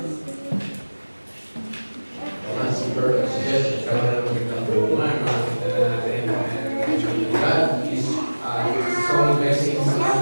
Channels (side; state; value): both; inverted; correlation -1.00